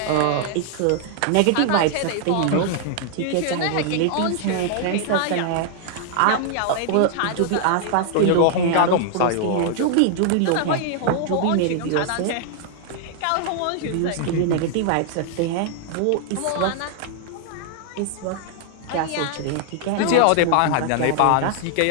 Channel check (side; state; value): both; different; correlation 0.00